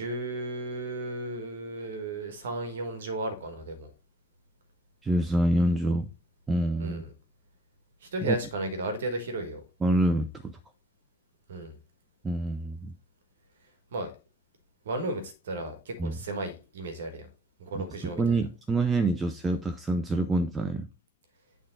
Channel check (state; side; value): normal; both; correlation 0.56